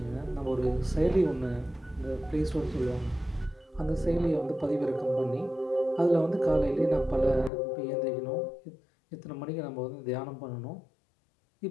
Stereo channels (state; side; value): drops out; right; at 7.5 s